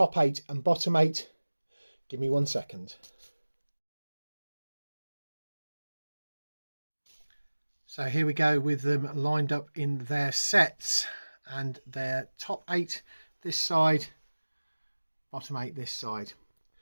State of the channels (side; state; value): both; inverted; correlation -1.00